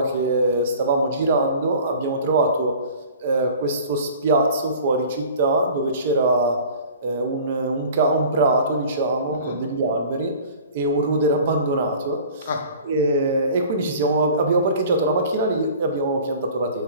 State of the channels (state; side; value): inverted; both; correlation -0.44